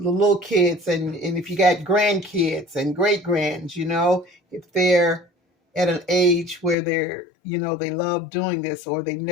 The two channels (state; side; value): drops out; right; at 6.8 s